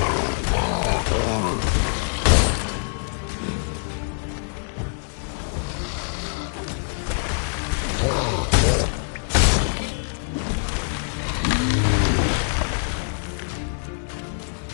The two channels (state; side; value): silent; right; digital silence